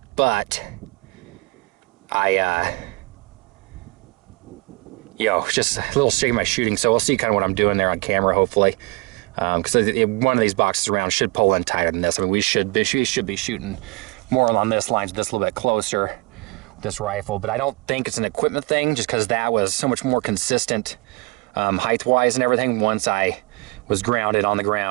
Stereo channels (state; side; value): quieter; left; 27.4 dB